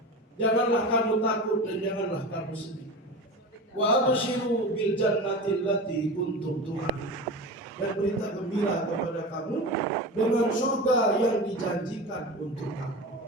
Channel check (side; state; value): both; normal; correlation 0.29